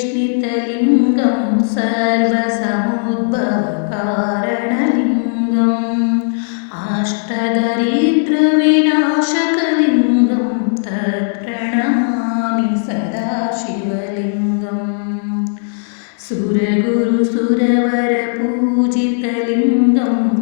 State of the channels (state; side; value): silent; right; 69 dB below the other